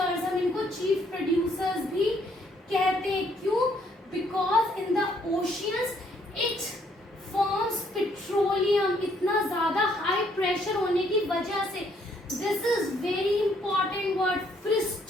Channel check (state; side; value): normal; both; correlation 0.68